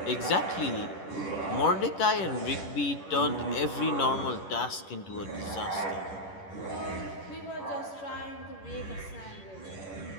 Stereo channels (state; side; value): late; right; 10 ms